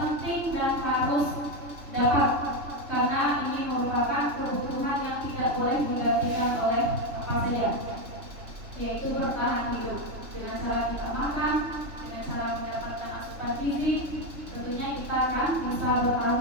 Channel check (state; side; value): late; left; 3.3 ms